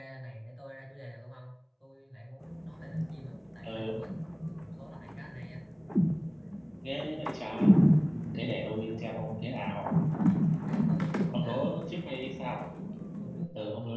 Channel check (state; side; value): identical; both; correlation 1.00